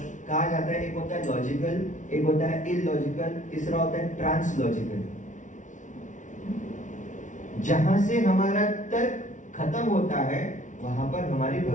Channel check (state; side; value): late; right; 0.37 ms